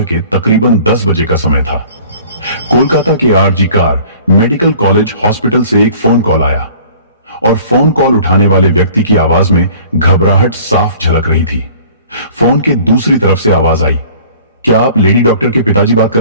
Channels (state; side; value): inverted; both; correlation -0.50